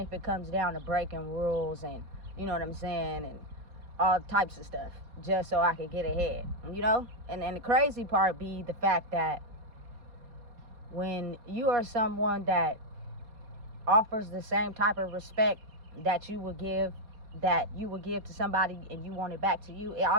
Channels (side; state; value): left; late; 4.2 ms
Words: it comes down to breaking rules and, you know what I'm saying, and all types of stuff, just so I could get ahead, you know? And the crazy part be the fact that when you are someone that offers the same type of respect that you would give to somebody and you want it back to you, it